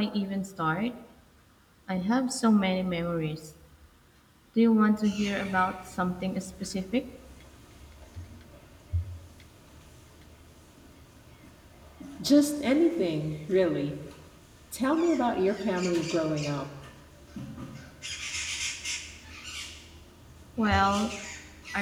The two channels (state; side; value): identical; both; correlation 1.00